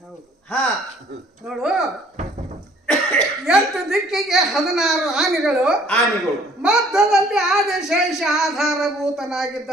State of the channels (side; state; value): both; normal; correlation 0.57